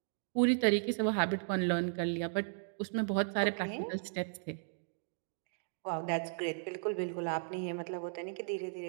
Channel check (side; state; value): left; silent; digital silence